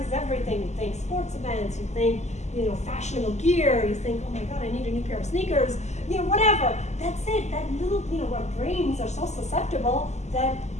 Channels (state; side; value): late; right; 0.33 ms